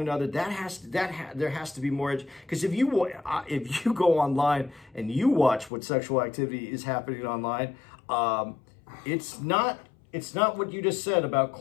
there has to be more, because if you go online and you watch what sexual activity is happening online, it's not what you just said about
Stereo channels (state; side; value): drops out; right; at 5.7 s